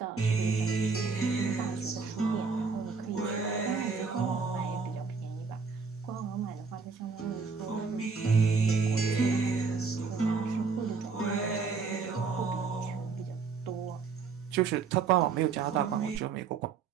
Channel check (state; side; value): quieter; left; 5.1 dB